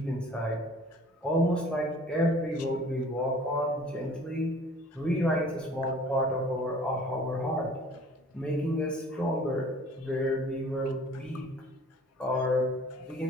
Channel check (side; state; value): both; normal; correlation 0.50